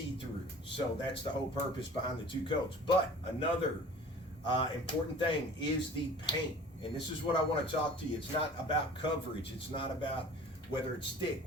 through. So that's the whole purpose behind the two coats. But another important thing is the paint. And this is what I want to talk to you. It's not about coverage. It's not about whether it's thick,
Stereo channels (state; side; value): normal; both; correlation 0.44